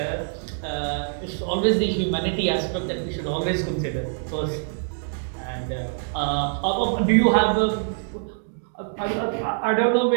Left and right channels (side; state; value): left; silent; digital silence